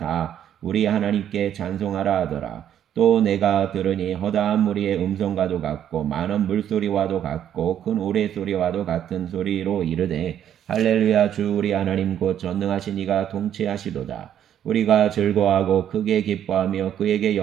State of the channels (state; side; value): quieter; left; 10.1 dB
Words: 우리 하나님께 찬송하라 하더라. 또 내가 들으니 허다한 무리의 음성과도 같고 많은 물소리와도 같고 큰 우레소리와도 같은 소리로 이르되 할렐루야 주 우리 하나님 곧 전능하신 이가 통치하시도다. 우리가 즐거워하고 크게 기뻐하며 그에게